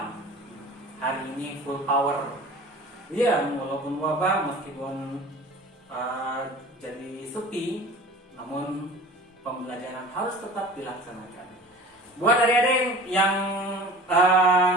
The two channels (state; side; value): normal; both; correlation 0.41